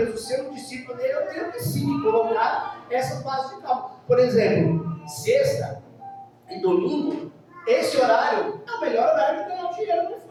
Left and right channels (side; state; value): both; identical; correlation 1.00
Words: ser um discípulo dele, eu tenho que sim colocar essa base de cálculo. Por exemplo, sexta e domingo, esse horário é o melhor horário de ganhar dinheiro no